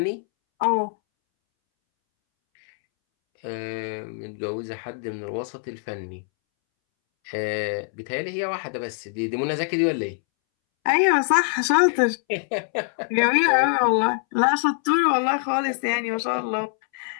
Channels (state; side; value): silent; right; 63 dB below the other